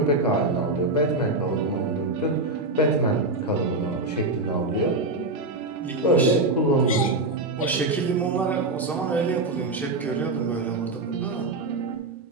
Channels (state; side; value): quieter; left; 3.0 dB